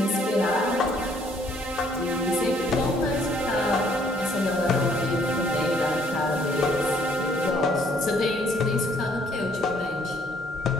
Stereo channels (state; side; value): normal; both; correlation 0.64